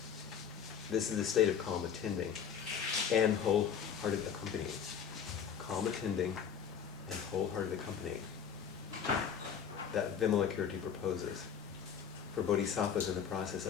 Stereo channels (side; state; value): right; quieter; 7.7 dB